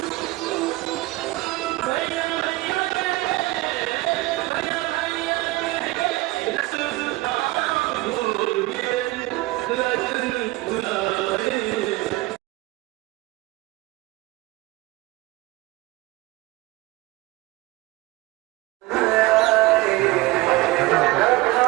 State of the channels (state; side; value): quieter; left; 19.9 dB